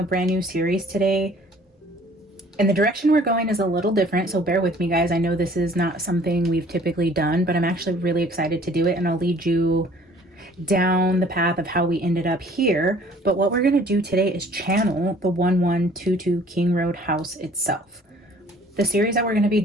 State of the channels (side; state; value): both; normal; correlation 0.54